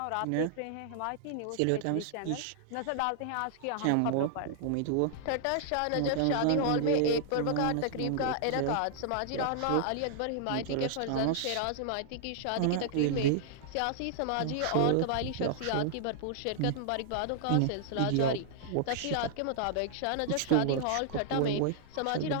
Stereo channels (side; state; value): both; different; correlation -0.01